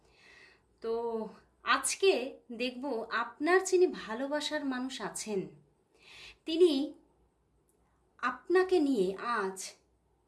তো আজকে দেখব আপনার যিনি ভালোবাসার মানুষ আছেন তিনি আপনাকে নিয়ে আজ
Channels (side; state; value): both; identical; correlation 1.00